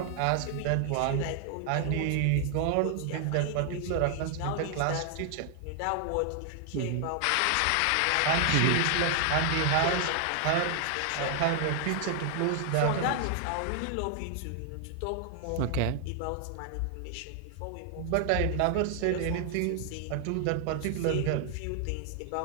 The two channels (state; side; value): different; both; correlation 0.00